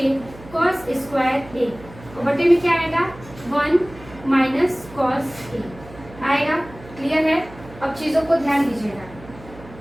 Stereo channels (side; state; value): right; noise; hum, 19 dB below the sound